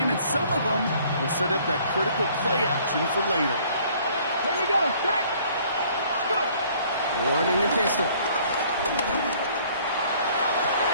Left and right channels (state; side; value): inverted; both; correlation -0.58